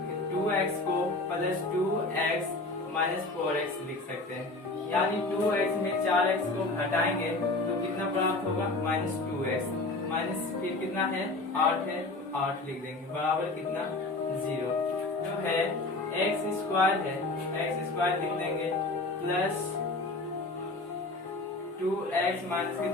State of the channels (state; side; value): quieter; right; 3.1 dB